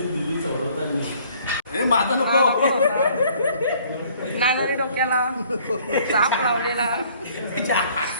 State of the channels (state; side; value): inverted; both; correlation -0.58